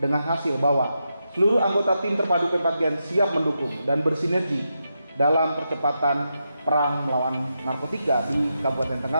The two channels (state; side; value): inverted; both; correlation -0.85